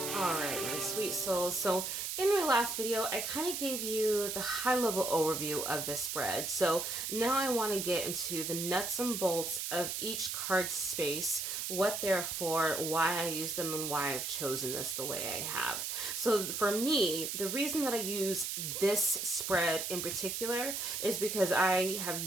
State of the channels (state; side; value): noise; right; hiss, 3 dB below the sound